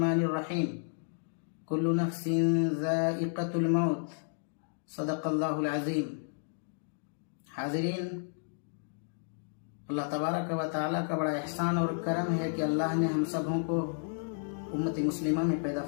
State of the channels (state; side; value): silent; right; digital silence